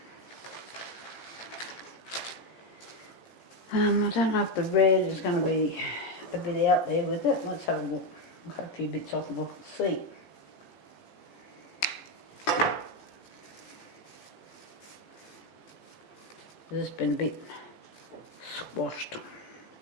I don't know if the red is going to be a bit out there with it. Let's have a look. I'll cut a few bits off and we'll see. This has been a bit squashed.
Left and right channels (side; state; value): right; late; 17 ms